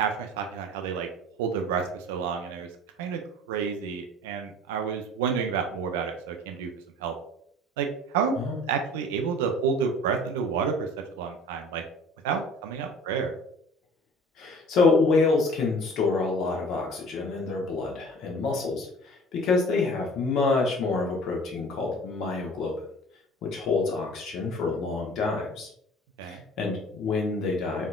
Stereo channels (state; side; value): normal; both; correlation 0.45